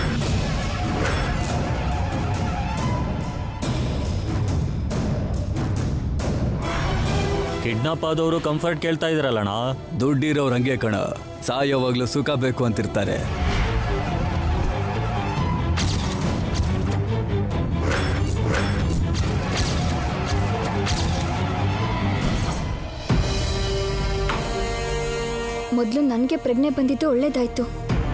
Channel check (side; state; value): both; identical; correlation 1.00